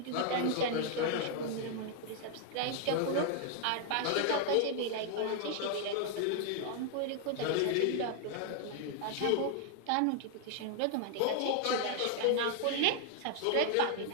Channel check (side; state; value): both; different; correlation 0.00